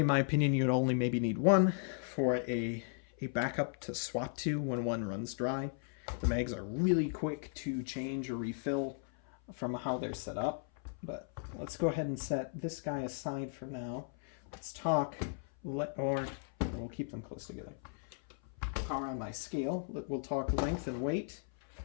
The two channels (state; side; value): silent; right; 54 dB below the other